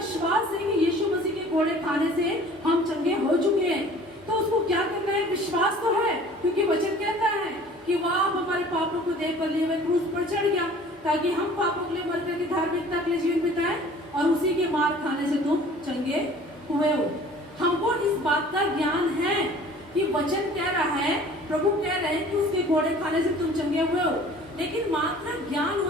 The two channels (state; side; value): normal; both; correlation 0.48